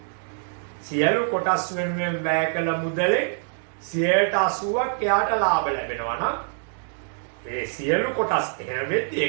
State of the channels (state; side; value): silent; left; digital silence